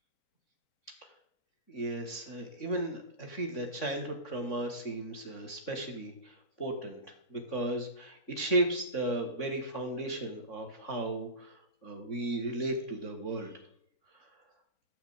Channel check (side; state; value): right; late; 3.6 ms